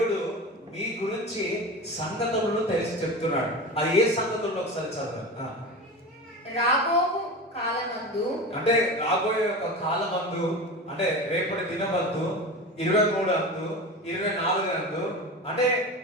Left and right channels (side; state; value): both; normal; correlation 0.28